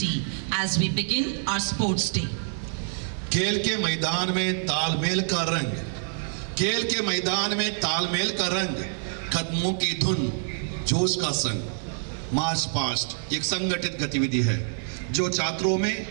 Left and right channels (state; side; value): silent; left; 56 dB below the other